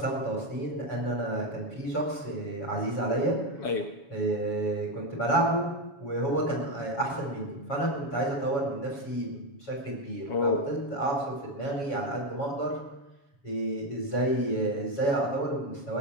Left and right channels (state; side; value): late; right; 7.1 ms